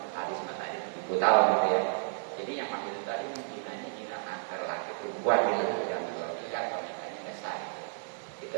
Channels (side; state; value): left; silent; digital silence